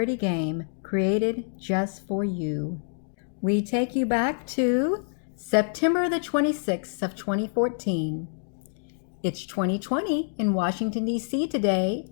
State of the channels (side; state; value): right; silent; digital silence